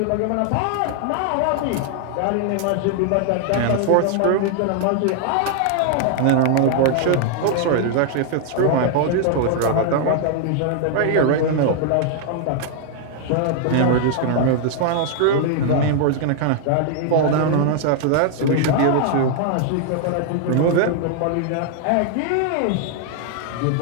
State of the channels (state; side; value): different; both; correlation 0.00